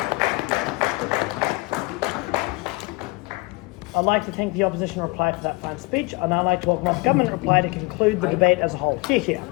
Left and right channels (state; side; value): quieter; right; 25.6 dB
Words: I'd like to thank the opposition reply for that fine speech. I'd now like to welcome up government reply to conclude the debate as a whole. Hear, hear.